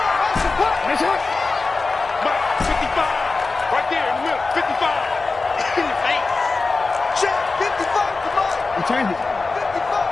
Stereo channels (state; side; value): quieter; right; 3.9 dB